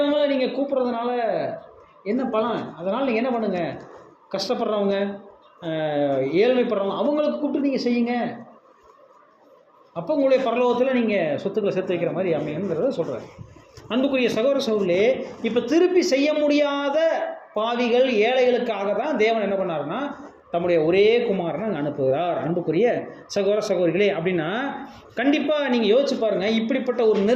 நீங்கள் கூப்பிட்றதுனால என்ன பலன்? அதனால் நீங்கள் என்ன பண்ணுங்கள், கஷ்டப்படுறவங்க, ஏழ்மைப்படுறவங்க, அவங்களுக்கு கூப்பிட்டு நீங்கள் செய்யுங்க. அப்போ உங்களுடைய பரலோகத்தில் நீங்கள் சொத்துக்களை சேர்த்து வைக்கிற மாதிரி அமையுங்கிறத சொல்கிறார். அன்புக்குரிய சகோதர சகோதரிகளே, இப்போ திருப்பி செய்ய முடியாத பாவிகள் ஏழைகளுக்காக தான் தேவன் என்ன பண்ணாருன்னா தம்முடைய ஒரே குமாரனை அனுப்புகிறார். அன்புக்குரிய சகோதர சகோதரிகளே, அப்படின்னா கண்டிப்பாக நீங்கள் யோசிச்சு பாருங்கள், இப்படிப்பட்ட ஒரு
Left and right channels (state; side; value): identical; both; correlation 1.00